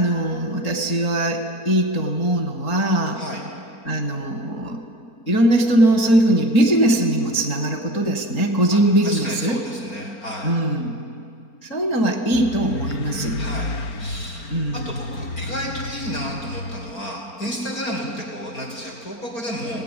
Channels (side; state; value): right; late; 4.4 ms